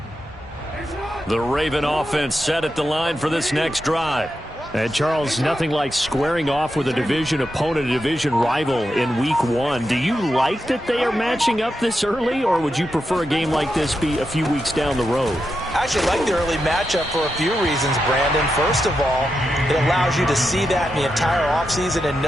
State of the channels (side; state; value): both; normal; correlation 0.87